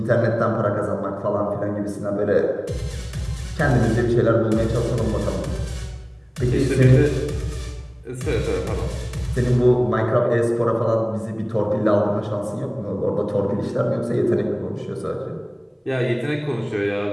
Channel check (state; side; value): identical; both; correlation 1.00